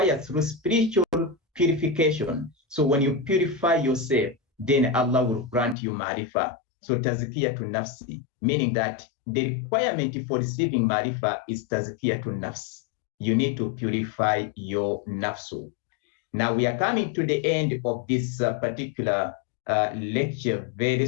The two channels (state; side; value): drops out; right; at 5.8 s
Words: through spiritual purification. So when you purify yourself, then Allah will grant you marifa. So tazkiyatun nafsi, meaning that the requirement for receiving marifa is tazkiyatun nafs. You need to purify your nafsu. Now we are coming to the end of this particular lecture very